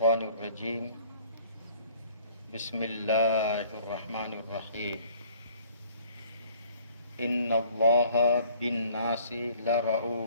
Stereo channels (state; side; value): inverted; both; correlation -0.55